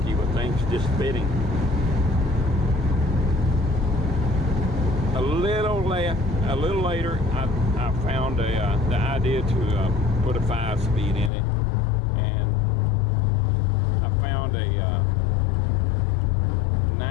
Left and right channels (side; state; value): right; drops out; at 11.3 s